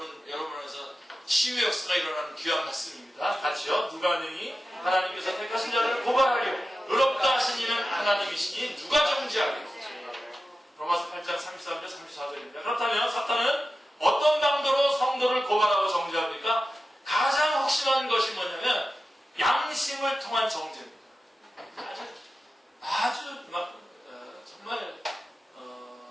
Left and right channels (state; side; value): normal; both; correlation 0.93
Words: 여러분에서 치유 역사가 일어나는 귀한 말씀입니다. 같이요. 누가 능히 하나님께서 택하신 자를 고발하려 의롭다 하신 이는 하나님이시니 누가 정죄하겠고. 로마서 8장 33절 34절입니다. 그렇다면 사탄은 어떤 강도로 성도를 고발하고 정죄합니까? 가장 확실한 것이 뭐냐면 양심을 통한 정죄입니다. 아주 정말